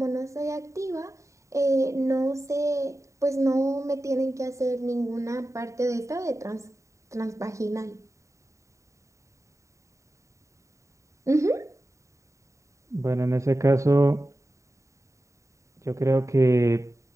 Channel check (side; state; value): left; late; 0.15 ms